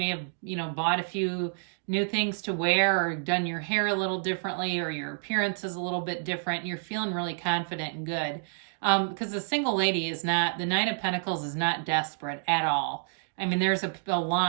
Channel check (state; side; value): silent; left; digital silence